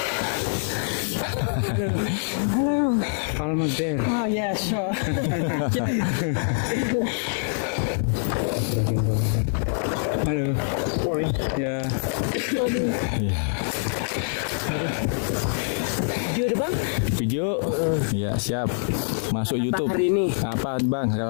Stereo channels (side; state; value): right; silent; digital silence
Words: Almost there. Oh yeah, sure. Halo. Ya. Ya. Video deh bang. Video. Ya siap. Masuk YouTube. Hari ini. Apa bang